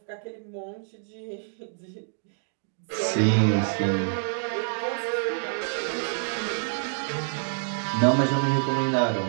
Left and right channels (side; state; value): left; silent; digital silence